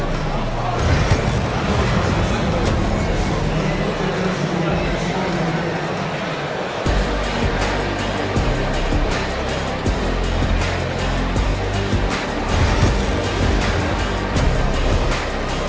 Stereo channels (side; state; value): both; identical; correlation 1.00